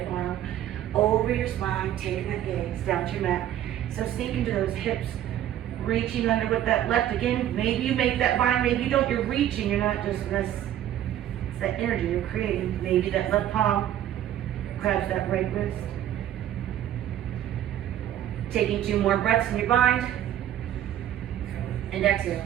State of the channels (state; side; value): quieter; left; 11.6 dB